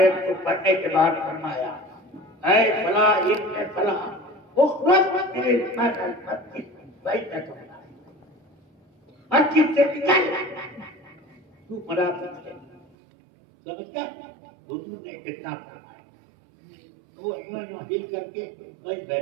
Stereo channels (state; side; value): drops out; left; at 12.9 s